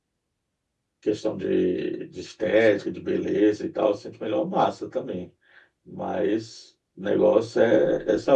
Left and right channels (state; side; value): identical; both; correlation 1.00